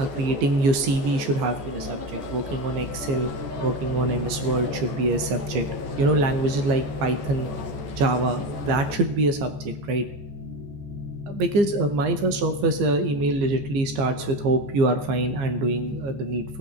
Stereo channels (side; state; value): left; late; 15 ms